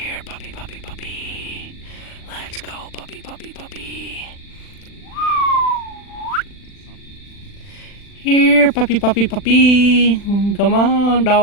puppy, puppy, puppy. Let's go, puppy, puppy, puppy. Here, puppy, puppy, puppy. Come on,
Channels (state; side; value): late; right; 40 ms